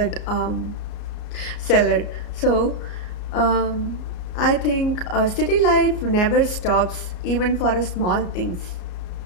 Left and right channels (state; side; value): late; right; 33 ms